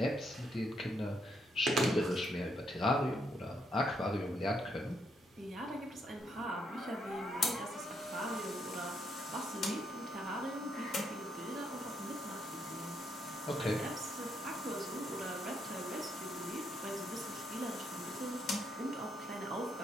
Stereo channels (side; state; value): both; normal; correlation 0.75